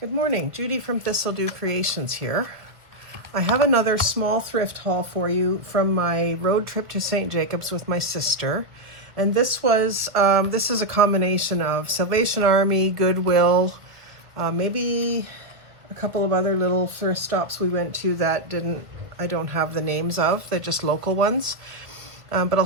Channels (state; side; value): late; left; 1.9 ms